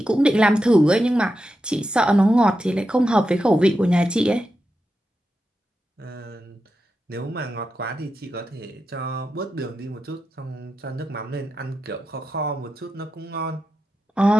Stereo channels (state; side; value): normal; both; correlation 0.89